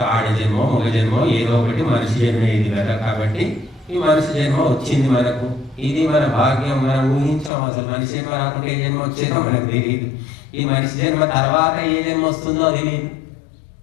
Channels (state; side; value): drops out; right; at 7.5 s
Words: ఆడ జన్మ మగ జన్మ ఏదో ఒకటి మనిషి జన్మ ఇది కదా. కాబట్టి ఈ మనిషి జన్మ వచ్చింది మనకు, ఇది మన భాగ్యం. మనం ఊహించాం, అసలు మనిషి జన్మ రాకుండా ఏ జన్మ వచ్చేదో మనకు తెలియదు. ఈ మనిషి జన్మ తర్వాత ఏ జన్మ వస్తుందో తెలియదు.